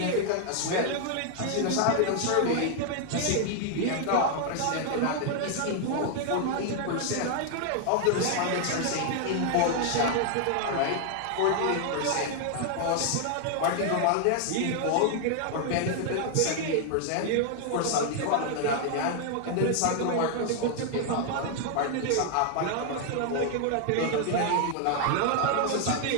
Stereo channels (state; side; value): different; both; correlation 0.00